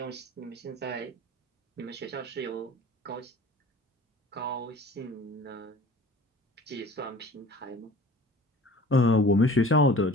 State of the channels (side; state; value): both; normal; correlation 0.44